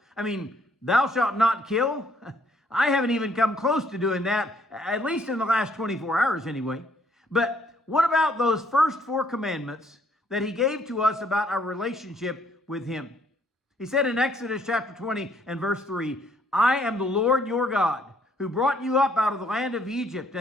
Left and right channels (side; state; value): both; normal; correlation 0.66